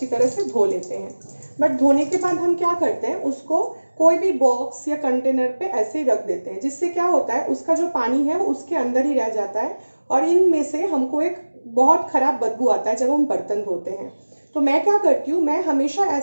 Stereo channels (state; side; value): inverted; both; correlation -1.00